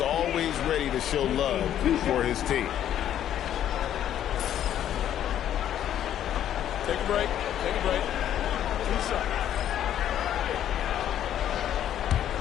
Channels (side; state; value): right; quieter; 10.8 dB